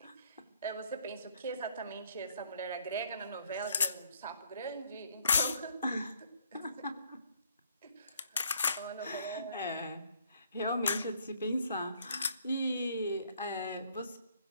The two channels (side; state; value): both; inverted; correlation -0.65